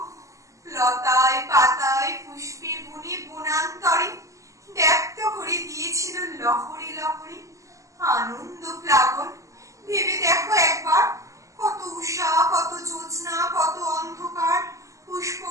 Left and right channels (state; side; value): late; left; 0.16 ms